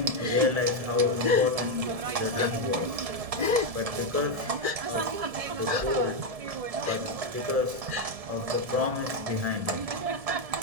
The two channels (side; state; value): left; late; 1.7 ms